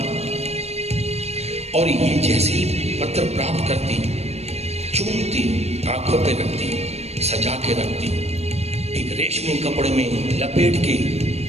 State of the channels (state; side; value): late; left; 0.31 ms